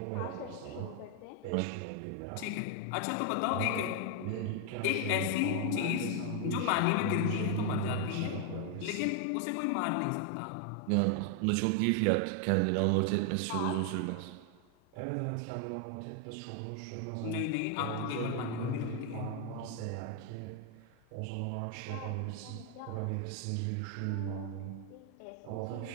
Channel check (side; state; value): both; different; correlation 0.01